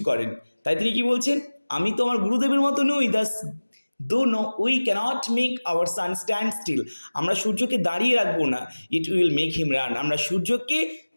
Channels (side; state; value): both; inverted; correlation -1.00